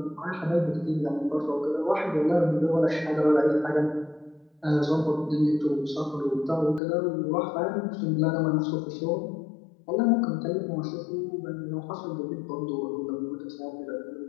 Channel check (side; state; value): right; drops out; at 6.8 s